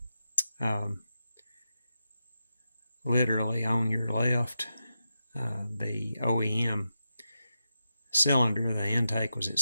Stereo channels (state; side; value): inverted; both; correlation -0.89